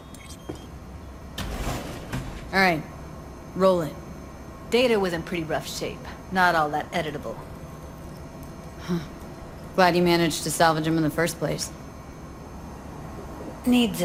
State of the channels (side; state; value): both; identical; correlation 1.00